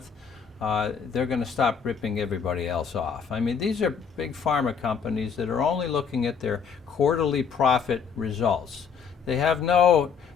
they're going to stop ripping everybody else off. I mean, these are big pharma companies that are only looking at their quarterly profit results. They have no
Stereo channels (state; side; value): quieter; right; 6.5 dB